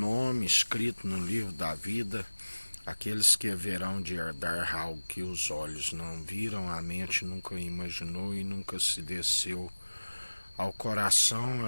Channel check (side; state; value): both; inverted; correlation -1.00